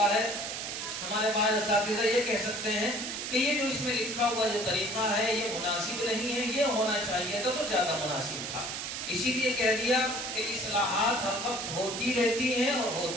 ہے، ہمارے بعض اساتذہ یہ کہہ سکتے ہیں کہ یہ جو اس میں لکھا ہوا جو طریقہ ہے یہ مناسب نہیں ہے، یہ ہونا چاہیے تھا تو زیادہ مناسب تھا۔ اسی لیے کہہ دیا کہ اصلاحات ہر وقت ہوتی رہتی ہیں اور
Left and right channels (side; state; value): right; noise; hiss, 5 dB below the sound